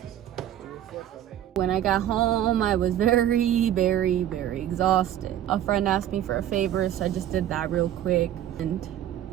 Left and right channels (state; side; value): quieter; left; 11.5 dB